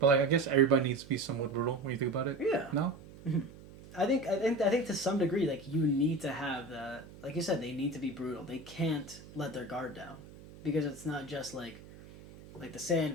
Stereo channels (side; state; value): right; noise; hum, 18 dB below the sound